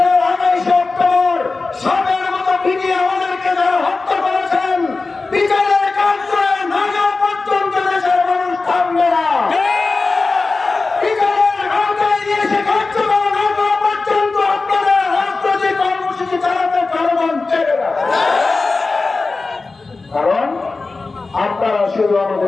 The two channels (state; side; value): quieter; right; 3.8 dB